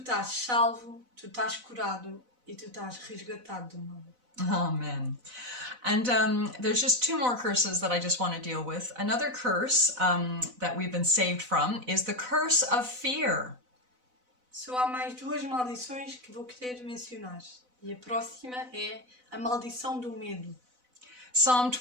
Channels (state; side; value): late; left; 4.0 ms